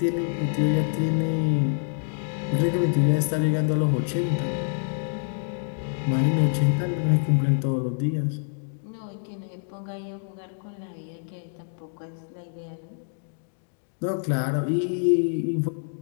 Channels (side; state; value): right; silent; digital silence